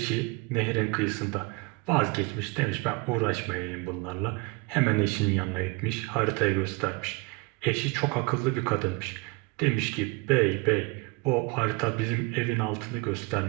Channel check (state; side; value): quieter; left; 26.7 dB